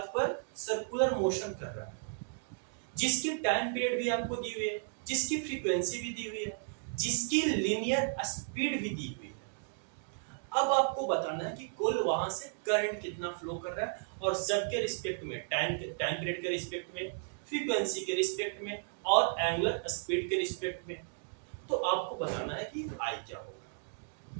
पर सर्कुलर मोशन कर रहा है, जिसकी टाइम पीरियड भी आपको दी हुई है, जिसकी फ्रीक्वेंसी भी दी हुई है, जिसकी लीनियर स्पीड भी दी हुई है। अब आपको बताना है कि कुल वहां से करंट कितना फ्लो कर रहा है और सबके रिस्पेक्ट में, टाइम पीरियड के रिस्पेक्ट में, फ्रीक्वेंसी के रिस्पेक्ट में और एंगुलर स्पीड के रिस्पेक्ट में। तो आपको बताना है कि आई क्या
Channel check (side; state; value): left; silent; digital silence